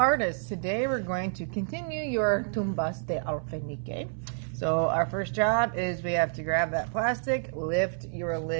today we're going to continue your Tombas de Alfenique. So our first job is we have to grab that plastic, lift your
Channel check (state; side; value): silent; left; 59 dB below the other